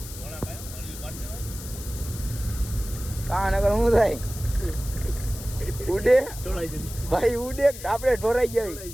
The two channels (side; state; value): left; noise; hiss, 13 dB below the sound